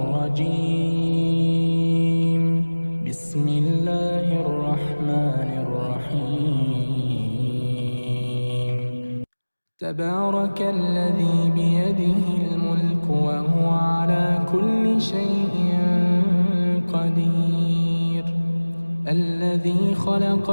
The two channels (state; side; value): inverted; both; correlation -1.00